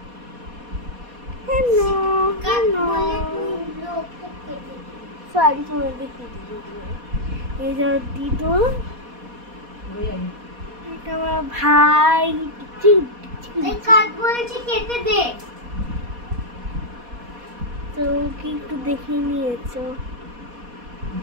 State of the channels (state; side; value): late; left; 4.2 ms